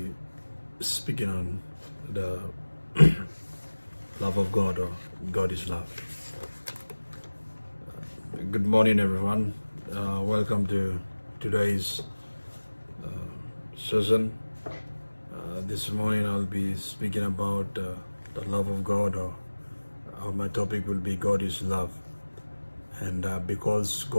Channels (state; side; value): inverted; both; correlation -1.00